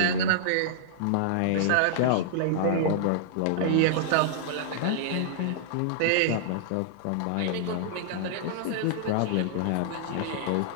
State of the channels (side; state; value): both; different; correlation -0.01